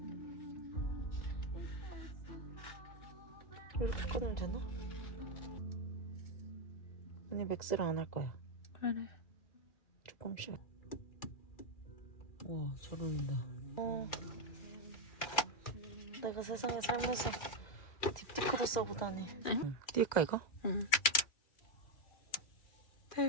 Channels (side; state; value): right; late; 2.4 ms